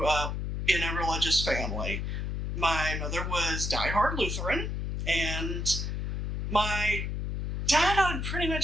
up in a religious family. My mother was diehard Lutheran, and my dad, I would pretty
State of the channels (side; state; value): left; noise; hum, 3 dB below the sound